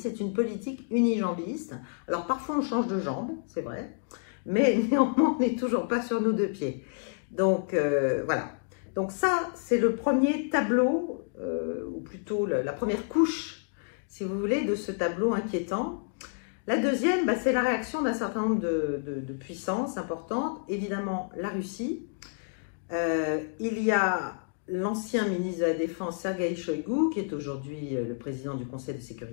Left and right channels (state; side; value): silent; right; digital silence